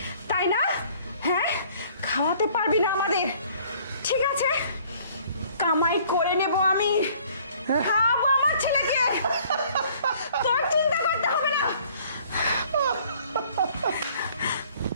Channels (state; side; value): inverted; both; correlation -0.57